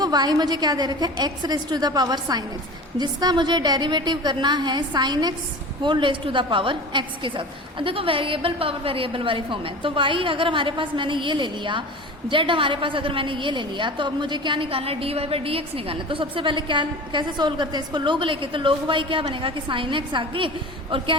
y मुझे क्या दे रखा है x raise to the power sine x, जिसका मुझे डेरिवेटिव करना है sine x whole raise to the power x के साथ। अब देखो वेरिएबल पावर वेरिएबल वाली फॉर्म है, तो y अगर हमारे पास मैंने ये ले लिया जेड हमारे पास अगर मैंने ये ले लिया तो अब मुझे क्या निकालना है, d y by d x निकालना है। तो सबसे पहले क्या कैसे सोल्व करते हैं इसको, लोग लेके, तो लोग वाई क्या बनेगा कि साइन एक्स आगे और क्या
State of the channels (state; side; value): normal; both; correlation 0.35